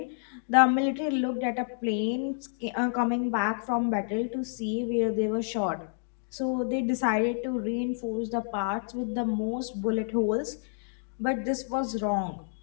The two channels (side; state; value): right; silent; digital silence